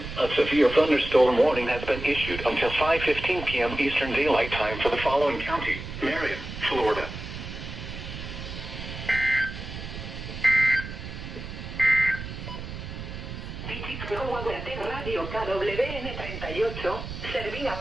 a severe thunderstorm warning has been issued until 5:15 p.m. Eastern Daylight Time for the following county: Marion, Florida. Radio KWN38, servida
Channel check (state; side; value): noise; right; rumble, 9 dB below the sound